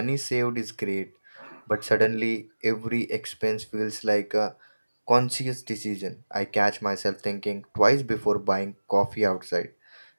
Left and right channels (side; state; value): both; inverted; correlation -1.00